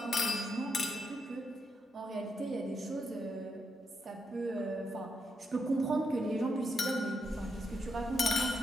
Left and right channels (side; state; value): both; normal; correlation 0.82